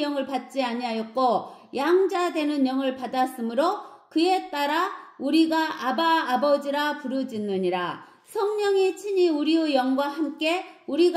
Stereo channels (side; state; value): both; identical; correlation 1.00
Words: 영을 받지 아니하였고 양자 되는 영을 받았으므로 그에 따라 우리가 아바 아버지라 부르짖느니라. 성령이 친히 우리의 영과 함께